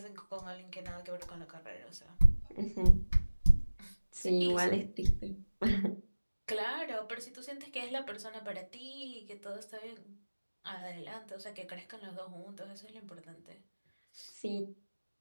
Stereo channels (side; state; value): both; inverted; correlation -1.00